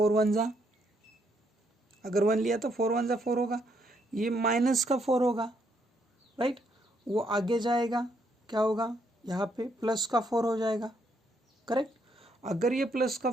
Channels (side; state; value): both; normal; correlation 0.73